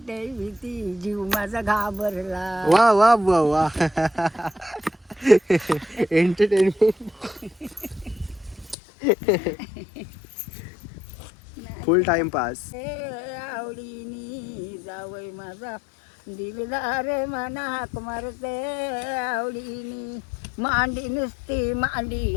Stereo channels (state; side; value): drops out; right; at 8.8 s